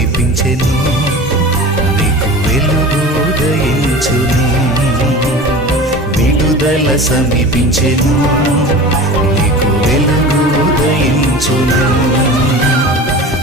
నీకు వెలుగు ఉదయించును, విడుదల సమీపించెను, నీకు వెలుగు ఉదయించును.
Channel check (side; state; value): both; normal; correlation 0.35